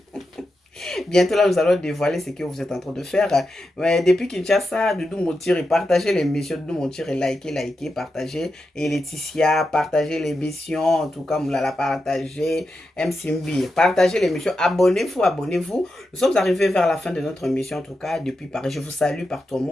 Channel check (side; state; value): both; normal; correlation 0.88